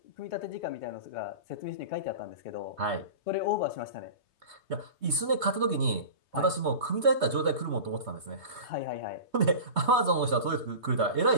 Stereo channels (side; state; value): left; late; 3.2 ms